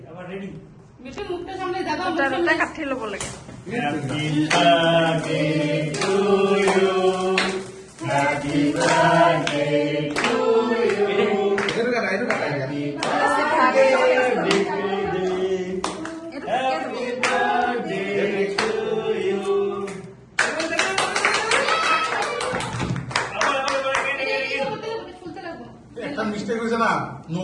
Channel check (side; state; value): both; identical; correlation 1.00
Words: Ready? Bittu মুখটা সামনে দাদা ওটা কাটছিল বলে Happy birthday to you. Happy birthday to you. এটা কাটা, এটা কাটা। Happy birthday to you. ফুলতে লাগবো একটা মিস্টেক হয়েছে না, নো